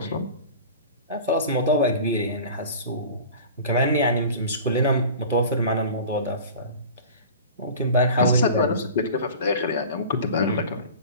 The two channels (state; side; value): inverted; both; correlation -0.38